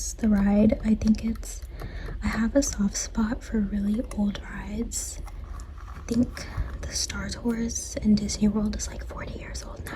the ride. I have a soft spot for really old rides. I think the Star Tours in Disney World is like 40 years old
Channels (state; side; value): identical; both; correlation 1.00